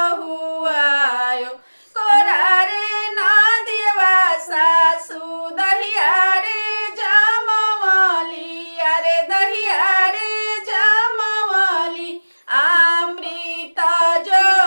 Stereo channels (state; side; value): inverted; both; correlation -1.00